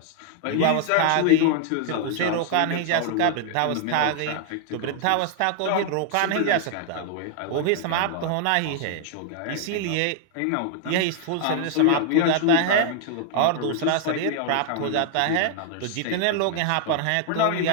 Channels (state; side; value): different; both; correlation 0.00